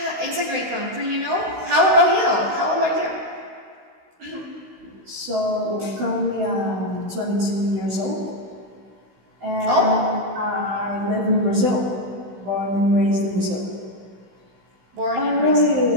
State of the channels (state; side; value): late; left; 16 ms